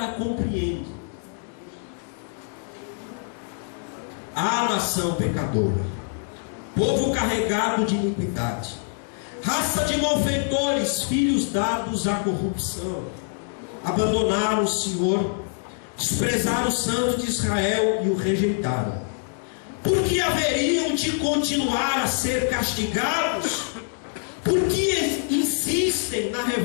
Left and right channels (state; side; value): silent; right; digital silence